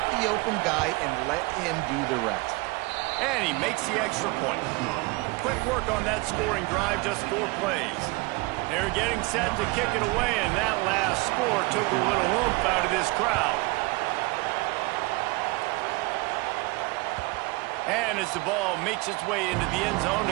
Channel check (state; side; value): quieter; left; 24.8 dB